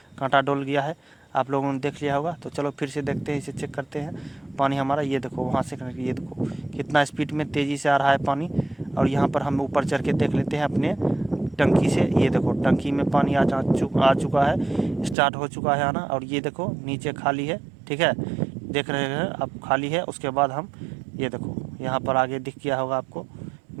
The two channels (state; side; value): drops out; left; at 15.2 s